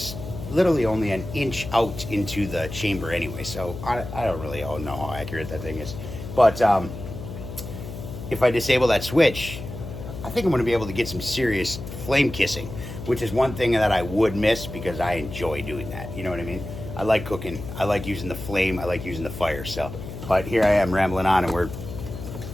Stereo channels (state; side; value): noise; left; hum, 10 dB below the sound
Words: literally only an inch out into the chamber anyway, so I don't really know how accurate that thing is. But if I disable that switch, I think I'm going to be able to get some serious flame kissing, which is one thing that I would miss because I enjoy doing that, you know what I mean? I like cooking, I like using the flame, I like using the fire. So, but here I am rambling on and we're